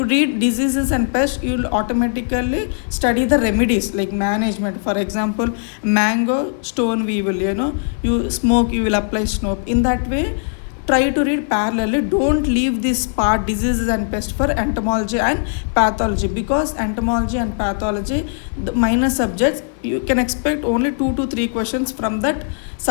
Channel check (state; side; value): silent; right; digital silence